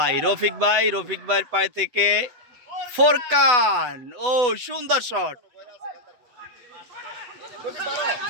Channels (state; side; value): late; left; 8.1 ms